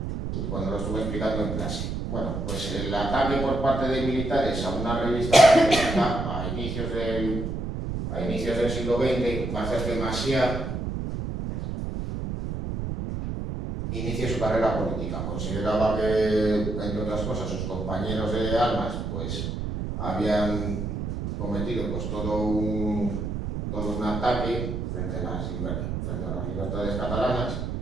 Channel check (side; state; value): right; noise; rumble, 3 dB below the sound